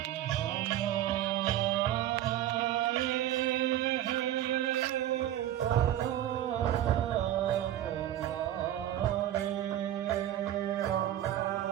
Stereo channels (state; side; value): quieter; left; 12.4 dB